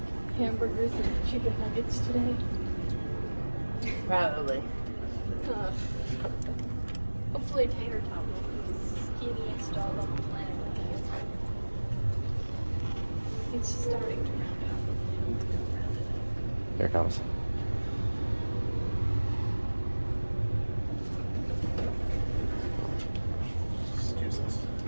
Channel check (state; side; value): inverted; both; correlation -1.00